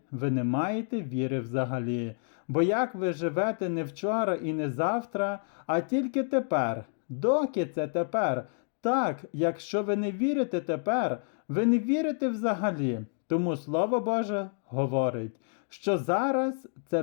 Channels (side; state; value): right; silent; 58 dB below the other